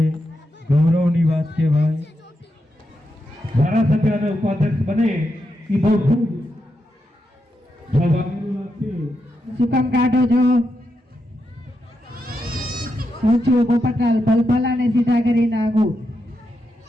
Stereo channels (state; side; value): normal; both; correlation 0.85